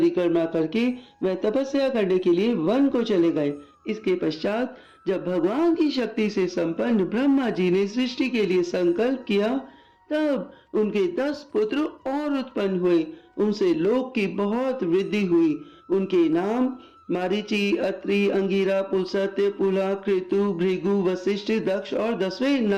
करके वह तपस्या करने के लिए वन को चले गए। इसके पश्चात जब भगवान की शक्ति से संपन्न ब्रह्मा जी ने सृष्टि के लिए संकल्प किया, तब उनके 10 पुत्र और उत्पन्न हुए। उनसे लोक की बहुत वृद्धि हुई। उनके नाम मारीचि, अत्रि, अंगिरा, पुलस्त्य, पुला, कृतु, भृगु, वशिष्ठ, दक्ष और 10वें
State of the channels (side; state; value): both; identical; correlation 1.00